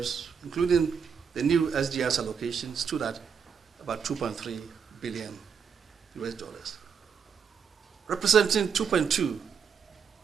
including the new SDRs allocation, stood at about $2.3 billion, representing 2.2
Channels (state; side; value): quieter; left; 6.7 dB